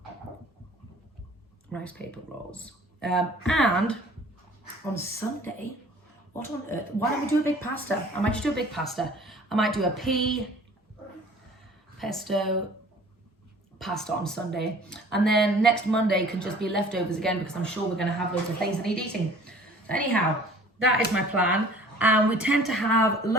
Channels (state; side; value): normal; both; correlation 0.50